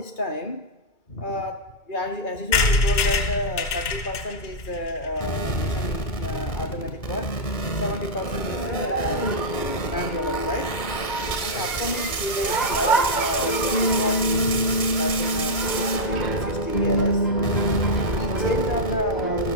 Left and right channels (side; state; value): right; late; 2.2 ms